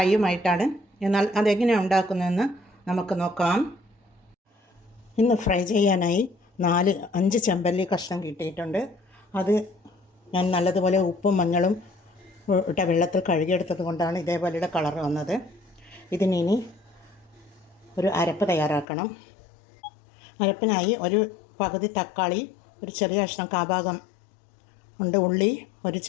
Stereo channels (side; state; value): right; drops out; at 18.9 s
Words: എന്നാൽ അതെങ്ങനെയാണ് ഉണ്ടാക്കുന്നതെന്ന് നമുക്ക് നോക്കാം. ഇന്ന് ഫ്രൈ ചെയ്യാനായി 4-5 ചെമ്പല്ലി കഷ്ണം കിട്ടിയിട്ടുണ്ട്. അത് ഞാൻ നല്ലതുപോലെ ഉപ്പും മഞ്ഞളും ഇട്ട വെള്ളത്തിൽ കഴുകിയെടുത്തത് കൊണ്ടാണ് ഇതേപോലെയുടെ കളർ വന്നത്. ഇതിനി ഒരു അരപ്പ് തയ്യാറാക്കണം. അരപ്പിനായി ഒരു പകുതി തക്കാളി, ഒരു ചെറിയ കഷ്ണം കാഭാഗം ഉണ്ട് ഉള്ളി, ഒരു